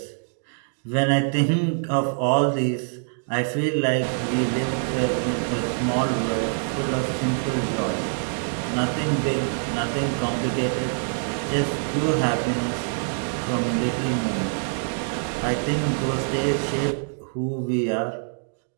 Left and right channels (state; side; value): silent; left; digital silence